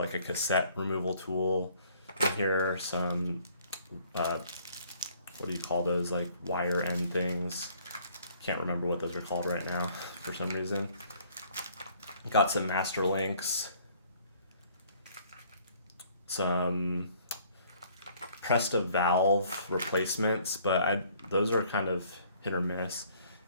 a cassette removal tool in here, some what do you call those, like wire end things? Can't remember what those are called right now for some reason. Got some master links, some Presta valve replacements, but those are kind of hit or miss.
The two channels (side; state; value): both; inverted; correlation -0.60